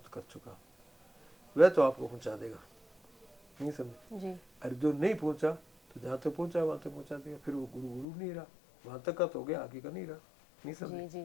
कर चुका, वह तो आपको पहुंचा देगा, नहीं समझे? जी। अरे जो नहीं पहुंचा तो जहां तक पहुंचा वहां तक पहुंचा देगा, फिर वो गुरु गुरु नहीं रहा, वहां तक का तो हो गया, आगे का नहीं रहा, नहीं समझे?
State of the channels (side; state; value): right; drops out; at 8.1 s